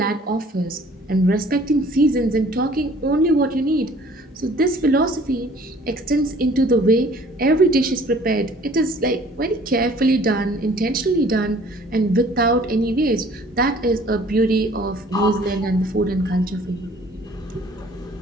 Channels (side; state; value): both; normal; correlation 0.54